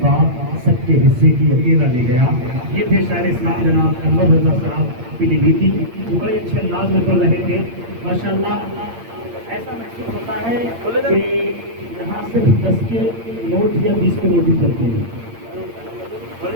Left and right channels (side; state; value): left; late; 8.7 ms